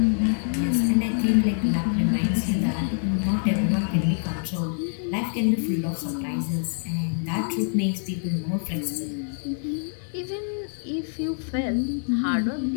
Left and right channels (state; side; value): silent; right; digital silence